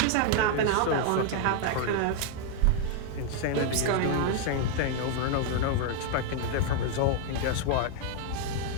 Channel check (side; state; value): both; different; correlation 0.00